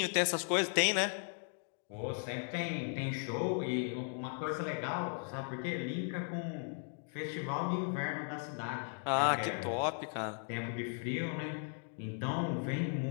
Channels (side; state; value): right; silent; 53 dB below the other